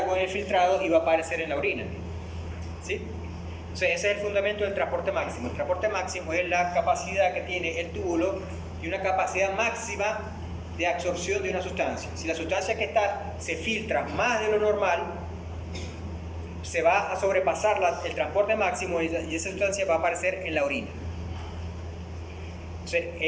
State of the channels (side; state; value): both; identical; correlation 1.00